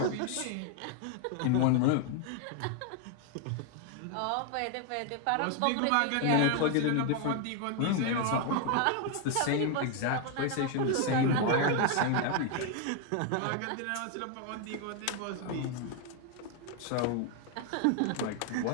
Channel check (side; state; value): both; different; correlation 0.01